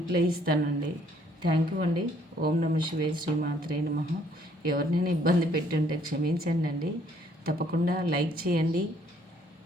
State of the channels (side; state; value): both; normal; correlation 0.64